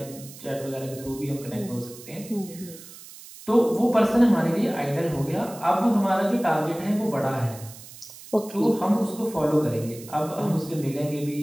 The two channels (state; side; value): noise; right; hiss, 17 dB below the sound